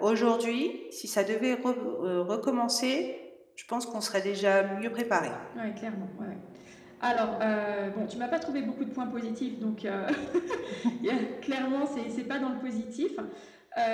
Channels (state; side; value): identical; both; correlation 1.00